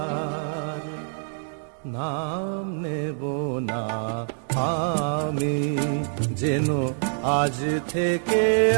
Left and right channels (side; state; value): left; silent; 61 dB below the other